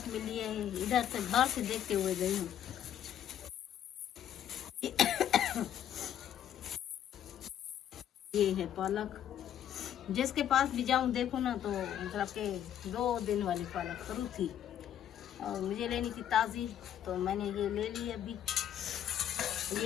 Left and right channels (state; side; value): quieter; right; 10.4 dB